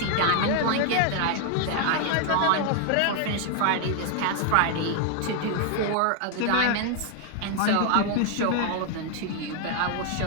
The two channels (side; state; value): both; different; correlation 0.00